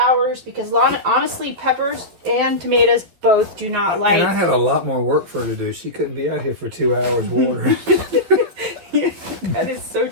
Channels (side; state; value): left; late; 12 ms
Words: because honestly, peppers and tomatoes both do not like... And I had a lot more work for her to do. She couldn't be out here for 2 hours watering. Yeah, that is so